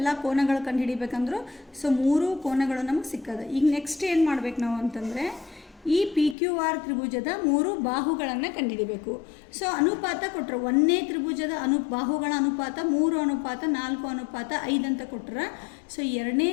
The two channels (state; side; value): drops out; right; at 6.4 s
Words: ಕೋನಗಳು ಕಂಡುಹಿಡಿಬೇಕಂದ್ರು. ಸೊ 3 ಕೋನಗಳು ನಮಗೆ ಸಿಕ್ಕದ. ಈಗ ನೆಕ್ಸ್ಟ್ ಏನು ಮಾಡ್ಬೇಕು ನಾವು ಅಂತಂದರೆ ಈ PQR ತ್ರಿಭುಜದ 3 ಬಾಹುಗಳನ್ನು ಕಂಡುಹಿಡಿಬೇಕು. ಸೊ ಅನುಪಾತ ಕೊಟ್ಟರು. 1ನೇ ತ್ರಿಭುಜದ ಬಾಹುಗಳ ಅನುಪಾತ 3:4:5 ಅಂತ ಕೊಟ್ಟರೆ. ಸೊ 1ನೇ